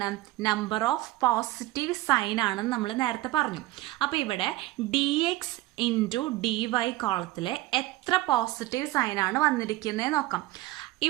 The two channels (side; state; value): left; quieter; 17.6 dB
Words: നമ്പർ ഓഫ് പോസിറ്റീവ് സൈൻ ആണെന്ന് നമ്മൾ നേരത്തെ പറഞ്ഞു. അപ്പൊ ഇവിടെ dx ഇൻറ്റു dy കോളത്തില് എത്ര പോസിറ്റീവ് സൈൻ ആണ് വന്നിരിക്കുന്നത് നോക്കാം.